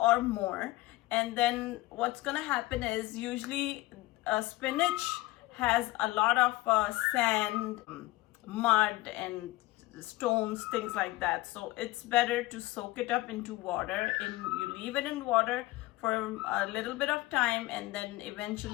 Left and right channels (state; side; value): quieter; right; 19.2 dB